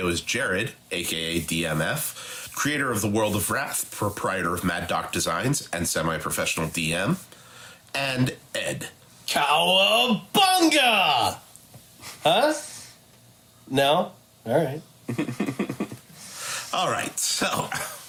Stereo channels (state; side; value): identical; both; correlation 1.00